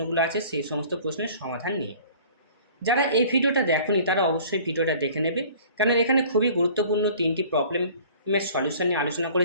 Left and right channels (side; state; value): both; inverted; correlation -0.48